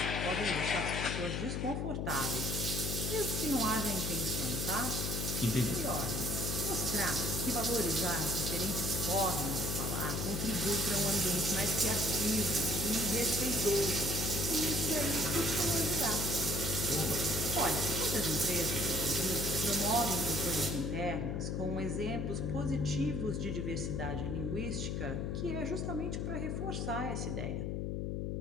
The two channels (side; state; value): left; noise; hum, 1 dB below the sound